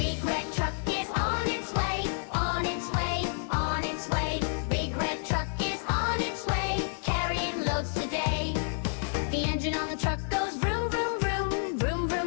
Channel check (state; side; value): silent; right; 58 dB below the other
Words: red truck is on its way, on its way, on its way. Big red truck is on its way, carrying loads today. The engine on the truck goes vroom, vroom, vroom, vroom,